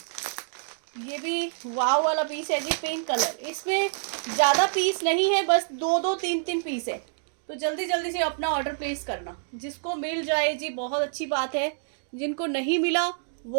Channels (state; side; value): silent; left; digital silence